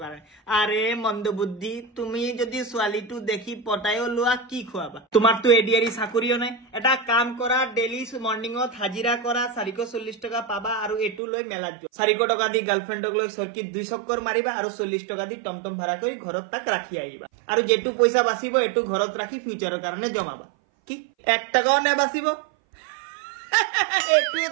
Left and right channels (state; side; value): drops out; left; at 11.2 s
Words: কাৰণে আৰে মন্দবুদ্ধি তুমি যদি ছোৱালীটো দেখি পটাইও লোৱা কি খুৱাবা তোমাৰতো এডিয়াৰি চাকৰিও নাই এটা কাম কৰা ডেলি মৰ্নিঙত হাজিৰা কৰা 440 টকা পাবা আৰু এটু লৈ মেলাত যোৱা 400 টকা দি গাৰ্লফ্ৰেণ্ডক লৈ চৰকিত 2 চক্কৰ মাৰিবা আৰু 40 টকা দি টমটম ভাড়া কৰি ঘৰত তাক ৰাখি আহিবা আৰু যেটু পইচা বাচিব এটু ঘৰত ৰাখি ফিউচাৰৰ কাৰণে জমাবা কি 1 টাকাও নেবাচিব এটুৱে